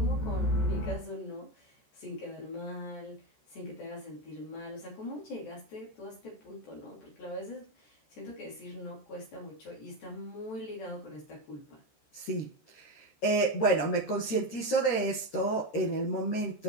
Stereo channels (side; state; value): right; late; 14 ms